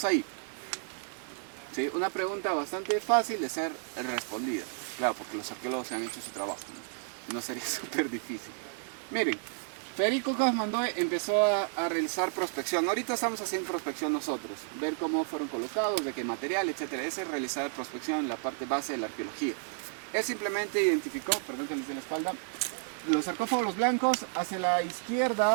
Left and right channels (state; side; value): silent; left; 57 dB below the other